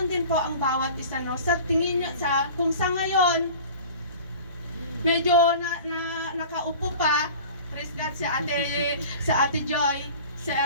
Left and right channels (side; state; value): both; inverted; correlation -0.41